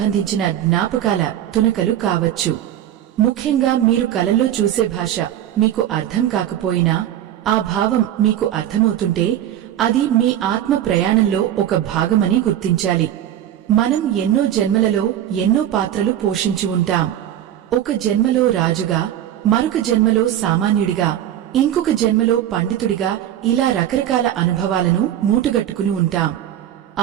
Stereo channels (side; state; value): left; quieter; 11.4 dB